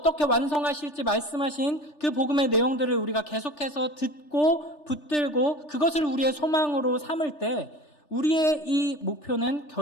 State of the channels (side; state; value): right; late; 3.4 ms